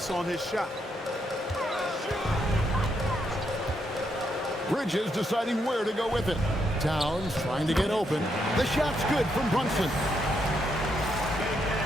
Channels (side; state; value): both; normal; correlation 0.78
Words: on his shot. Bridges deciding where to go with it. Towns trying to get open. The shot's good from Brunson.